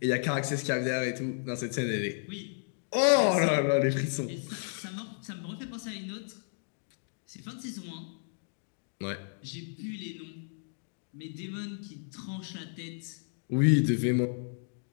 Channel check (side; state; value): right; silent; digital silence